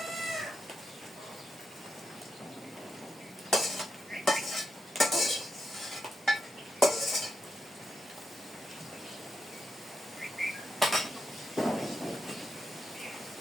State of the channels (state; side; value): normal; both; correlation 0.85